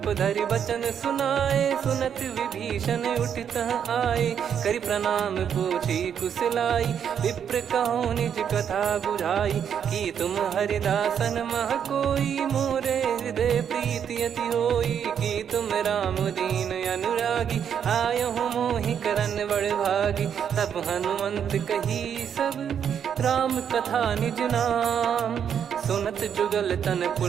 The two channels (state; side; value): quieter; left; 8.3 dB